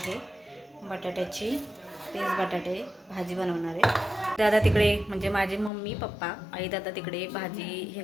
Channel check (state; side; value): drops out; right; at 5.7 s